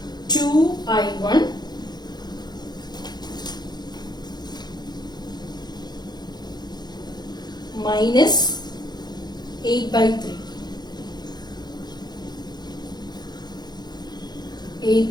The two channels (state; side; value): late; right; 0.20 ms